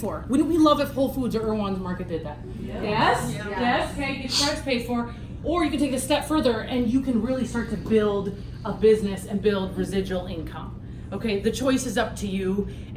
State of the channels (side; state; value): both; identical; correlation 1.00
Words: Wouldn't we love if Whole Foods or Erewhon's Market did that? Yes? Okay, get your products paid for. Or you can take it a step further and you can really start to build a business and build residual income. Okay, the choice is up to you